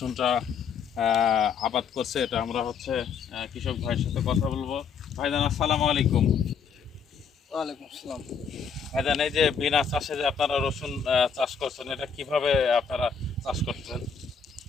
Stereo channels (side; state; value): right; quieter; 6.2 dB